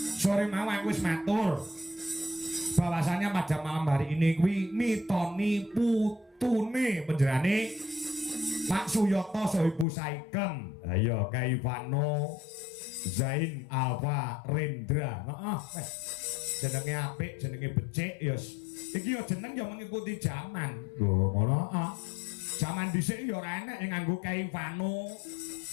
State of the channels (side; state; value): right; drops out; at 9.9 s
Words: Sore mau aku wis matur. Bahwasanya pada malam hari ini kuwi mitoni putune penjerane Pak Suyoto Sohibu Saikem. Ayo Kaivano Zain Alfa Rendra. Heeh. Jenenge apik, jenenge becik ya. Iki ya jeneng ya mengikuti zaman. Oh ngono ah. Zaman dhisik ya ora enek yang nganggo Kaivano